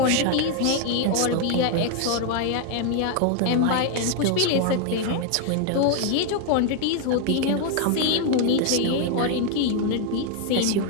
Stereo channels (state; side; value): different; both; correlation 0.00